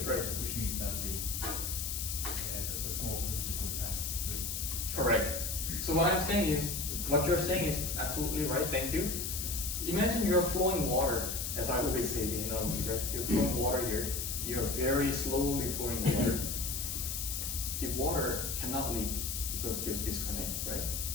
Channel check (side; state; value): left; noise; hiss, 3 dB below the sound